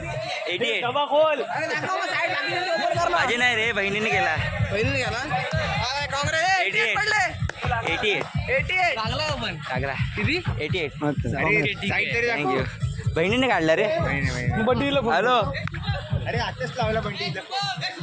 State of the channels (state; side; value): identical; both; correlation 1.00